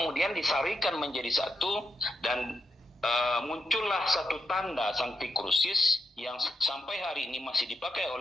disarikan menjadi satu dan muncullah satu tanda Sancti Crucis yang sampai hari ini masih dipakai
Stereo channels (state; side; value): normal; both; correlation 0.83